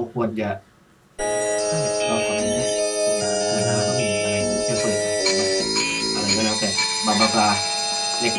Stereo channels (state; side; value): identical; both; correlation 1.00